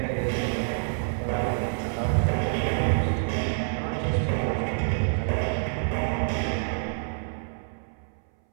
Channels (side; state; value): left; silent; 60 dB below the other